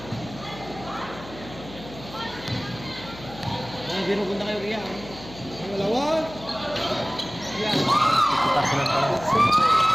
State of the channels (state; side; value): noise; left; hum, 16 dB below the sound